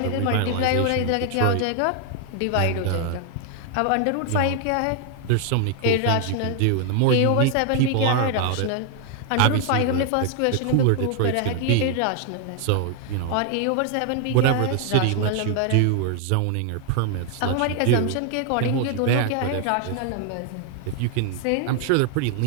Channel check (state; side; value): different; both; correlation 0.00